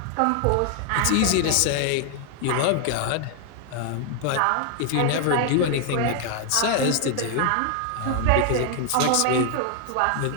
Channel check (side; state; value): both; different; correlation 0.00